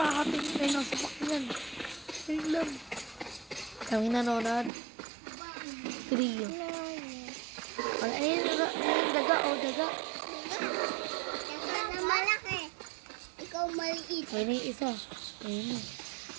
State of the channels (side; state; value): left; drops out; at 4.7 s